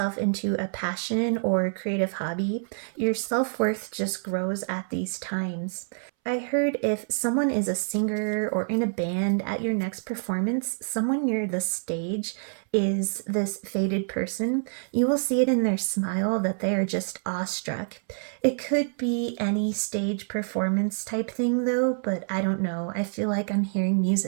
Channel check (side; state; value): left; silent; 60 dB below the other